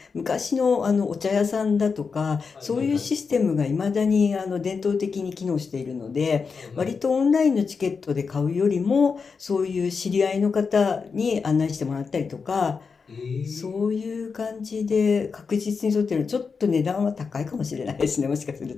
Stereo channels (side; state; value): right; quieter; 5.2 dB